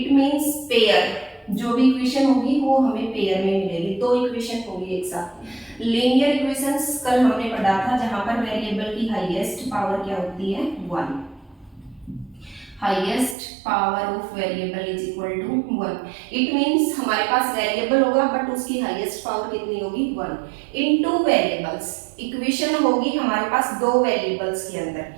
means pair, जो भी इक्वेशन होगी वो हमें पेयर में मिलेगी, दो इक्वेशन होगी एक साथ। लीनियर इक्वेशंस कल हमने पढ़ा था, जहां पर वेरिएबल की हाईएस्ट पावर क्या होती है, 1। Highest power of variable is equal to 1। It means हमारे पास वेरिएबल होगा बट उसकी हाईएस्ट पावर कितनी होगी, 1 इन टू वेरिएबल्स। इक्वेशन होगी हमारे पास दो वेरिएबल्स के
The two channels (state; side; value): drops out; left; at 13.4 s